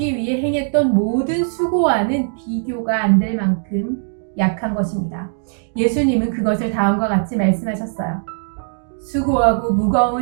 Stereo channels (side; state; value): left; silent; digital silence